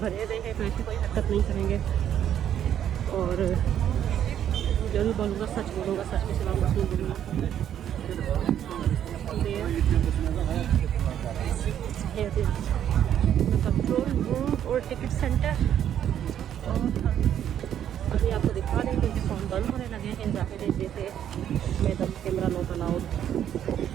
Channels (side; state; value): left; quieter; 10.1 dB